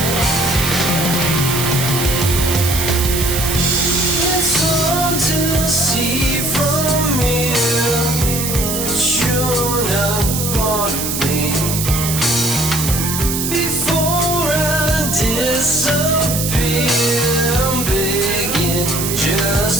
It's hard to see from here.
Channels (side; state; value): right; noise; hiss, 3 dB below the sound